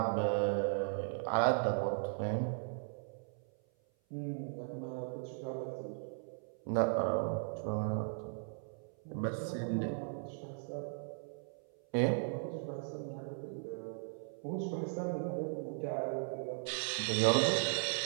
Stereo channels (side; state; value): left; silent; 53 dB below the other